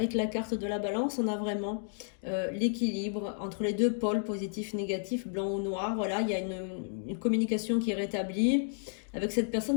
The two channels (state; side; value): silent; right; digital silence